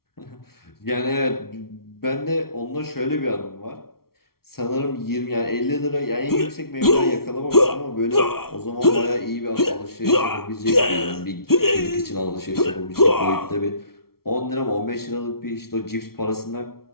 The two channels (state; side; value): late; right; 0.94 ms